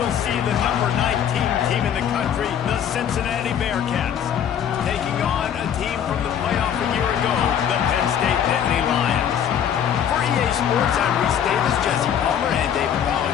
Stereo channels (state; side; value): quieter; right; 9.0 dB